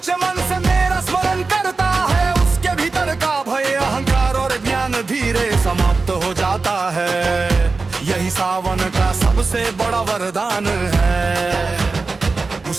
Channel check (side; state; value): left; quieter; 4.0 dB